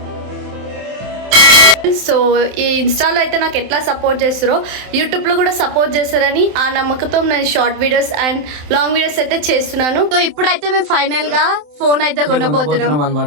So ఈ ఇన్స్టాలో అయితే నాకు ఎట్లా సపోర్ట్ చేస్తారో యూట్యూబ్లో కూడా సపోర్ట్ చేస్తారని ఆ నమ్మకంతో నేను short videos and long videos అయితే చేస్తున్నాను. సో ఇప్పుడైతే మేము ఫైనల్ గా ఫోన్ అయితే కొనబోతున్నాం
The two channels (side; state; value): left; late; 27 ms